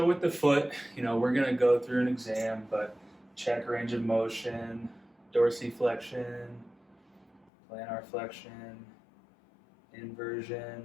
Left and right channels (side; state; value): right; drops out; at 7.5 s